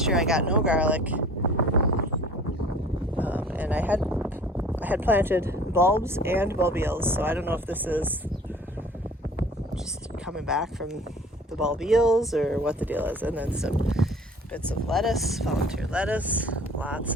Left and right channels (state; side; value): normal; both; correlation 0.47